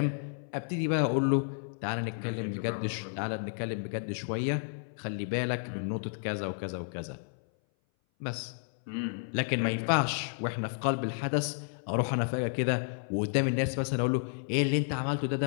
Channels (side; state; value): right; silent; 57 dB below the other